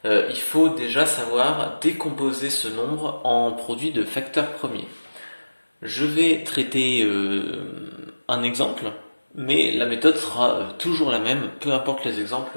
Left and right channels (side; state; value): both; inverted; correlation -1.00